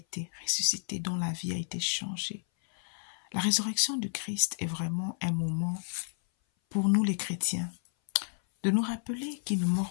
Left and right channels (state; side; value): silent; right; 57 dB below the other